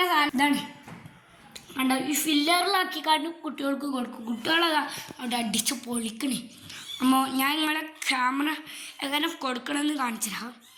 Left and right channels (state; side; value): identical; both; correlation 1.00